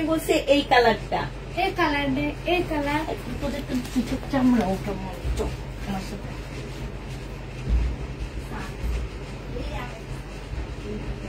বলছি এই কালারটা, এই কালার, এই কালার। তোদের তো দুটো চামড়া ওটা মতো আমার সাথে।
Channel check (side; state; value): both; identical; correlation 1.00